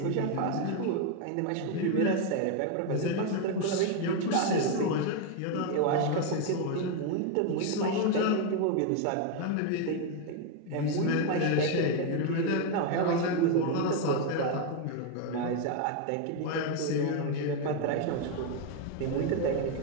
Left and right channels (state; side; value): different; both; correlation 0.01